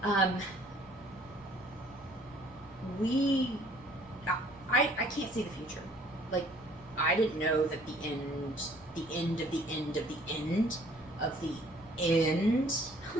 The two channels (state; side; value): noise; left; hum, 23 dB below the sound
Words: I can't see the future. Like, I didn't know that the end of the end of the end of the end,